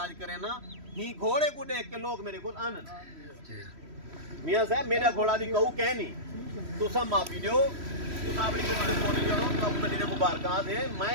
करे ना ही घोड़े को देख के लोग मेरे को आन। मियां साहब मेरा घोड़ा भी कहू कहनी, तुसा माफी दो, तुसा अपनी किसी बोली करो, तब कदी मुबारकात है। मैं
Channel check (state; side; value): late; left; 3.1 ms